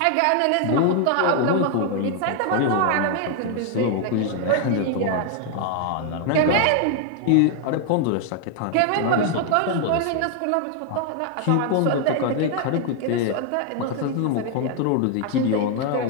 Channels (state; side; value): different; both; correlation 0.00